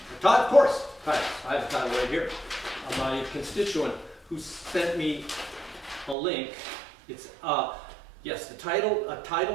Of course, titles. I have a title right here. My constituent who sent me a link. It's yes, the title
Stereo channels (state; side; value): drops out; left; at 6.2 s